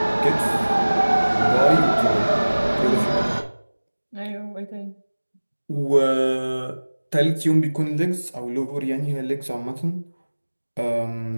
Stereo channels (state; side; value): inverted; both; correlation -1.00